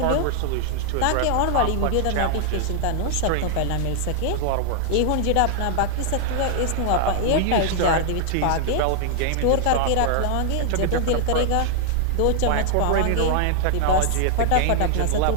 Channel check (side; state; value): both; different; correlation -0.01